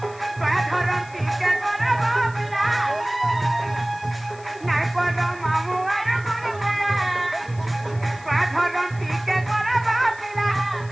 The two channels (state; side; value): noise; left; hiss, 24 dB below the sound